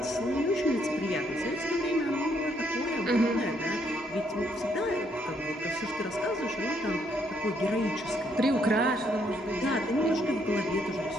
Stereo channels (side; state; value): both; normal; correlation 0.71